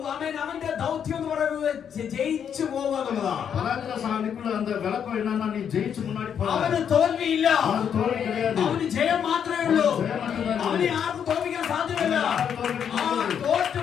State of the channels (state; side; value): quieter; right; 8.1 dB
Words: ആമേൻ അവന്റെ ദൗത്യം എന്ന് പറയുന്നത് ജയിച്ചു പോവുക എന്നുള്ളതാണ്. பராக்கிரமசாலிக்குள்ள அந்த விளக்கம் என்னன்னா நீ ஜெயிச்சு முன்னாடி போற. അവന് തോൽവിയില്ല. அவனுக்கு தோல்வி கிடையாது. അവന് ജയം മാത്രമേ ഉള്ളൂ. ജയം മാത്രമേ ഉള്ളൂ. അവനെ ആർക്കും തോൽപ്പിക്കാൻ സാധ്യമല്ല. ആർക്കും തോൽപ്പിക്കാൻ ആ സാധ്യമല്ല. തോറ്റ്